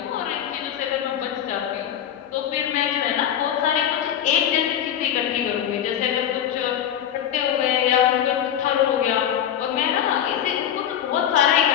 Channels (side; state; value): right; quieter; 10.0 dB